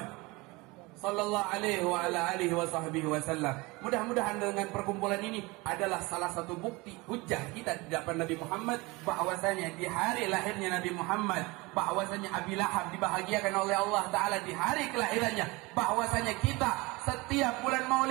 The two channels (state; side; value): quieter; left; 23.9 dB